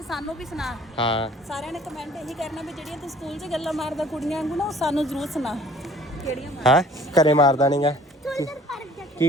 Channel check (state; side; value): normal; both; correlation 0.53